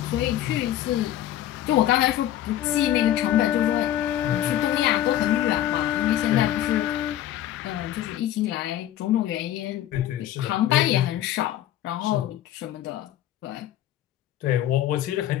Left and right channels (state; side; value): quieter; right; 12.4 dB